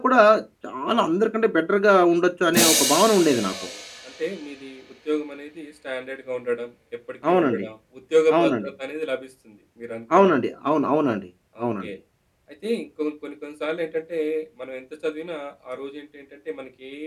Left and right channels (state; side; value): identical; both; correlation 1.00